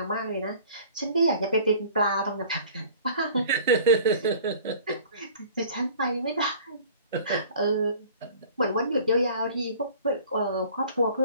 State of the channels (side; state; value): both; inverted; correlation -0.48